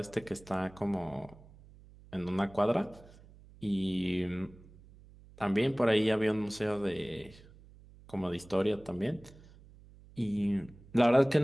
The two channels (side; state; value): right; noise; hum, 23 dB below the sound